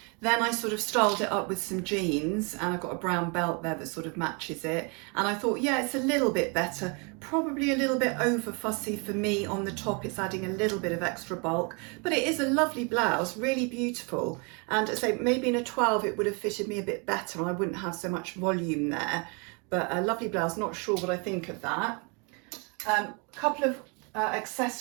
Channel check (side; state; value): left; quieter; 33.4 dB